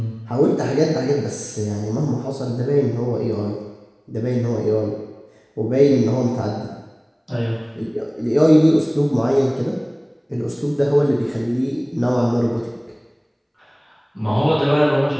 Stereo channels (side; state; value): both; identical; correlation 1.00